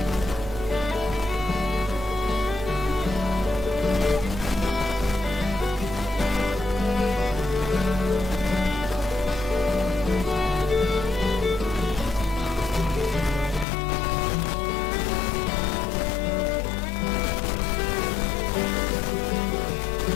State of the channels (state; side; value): drops out; right; at 13.7 s